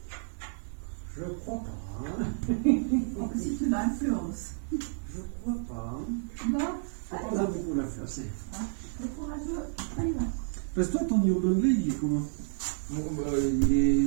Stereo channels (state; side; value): silent; left; digital silence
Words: Je crois pas. Hein. Oh, si tu m'influences. Je crois pourquoi pas. Hein. Bon, Faut allez, pas va. beaucoup la faire, c'est. Le courageux, allez, va. Parce que toi, ton niveau d'anglais, il est comment? Bon,